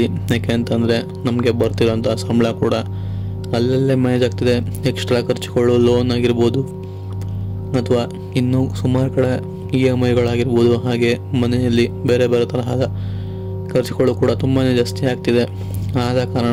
ಯಾಕೆ ಅಂತಂದರೆ ನಮಗೆ ಬರ್ತಿರೋಂಥ ಸಂಬಳ ಕೂಡ ಅಲ್ಲಲ್ಲೇ ಮ್ಯಾನೇಜ್ ಆಗ್ತಿದೆ. ಎಕ್ಸ್ಟ್ರಾ ಖರ್ಚುಗಳು, ಲೋನ್ ಆಗಿರ್ಬೋದು ಅಥವಾ ಇನ್ನೂ ಸುಮಾರು ಕಡೆ EMIಗಳಾಗಿರ್ಬೋದು, ಹಾಗೆ ಮನೆಯಲ್ಲಿ ಬೇರೆ ಬೇರೆ ತರಹದ ಖರ್ಚುಗಳು ಕೂಡ ತುಂಬಾ ಜಾಸ್ತಿ ಆಗ್ತಿದೆ. ಆದ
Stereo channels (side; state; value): both; identical; correlation 1.00